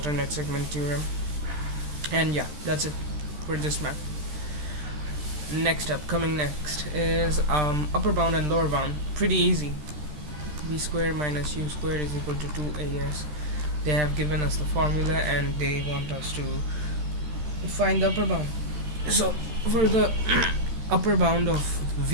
segment theorem. And yeah, that's it for this math. Coming next is upper bound and lower bound. Pretty easy. V squared minus u squared is equal to 2as. They have given us the formula and they want us to find the upper bound. So for the upper bound of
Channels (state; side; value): late; left; 13 ms